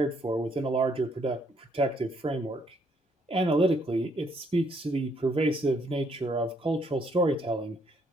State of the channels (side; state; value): both; normal; correlation 0.70